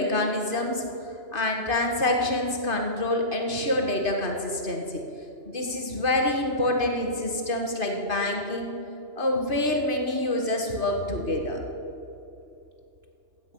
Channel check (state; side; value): late; left; 2.5 ms